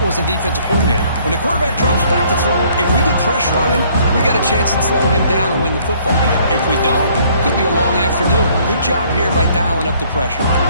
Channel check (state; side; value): inverted; both; correlation -0.61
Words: as a defensive coordinator. When the quarterback drops back to throw, if we get pressure on him, we got a chance to slow him down and win the football game. If we don't, it could be a long afternoon. Good job here by dialing up the pressure.